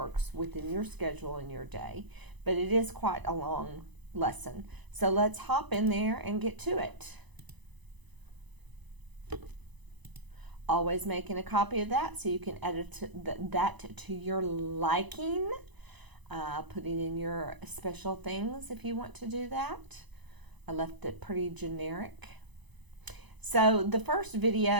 within your schedule and your day, but it is quite a long lesson. So let's hop in there and get to it. Always making a copy of that so you can edit that to your liking. Putting in your special things if you want to do that. I left it pretty generic. So the first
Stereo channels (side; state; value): left; late; 1.0 ms